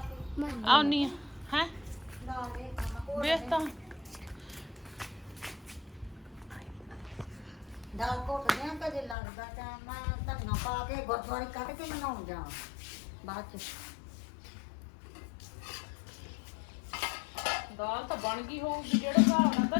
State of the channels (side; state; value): right; drops out; at 9.2 s